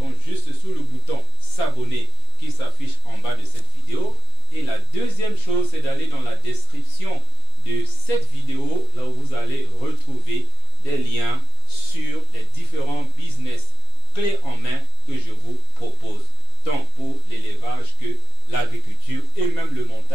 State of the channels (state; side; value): quieter; left; 3.9 dB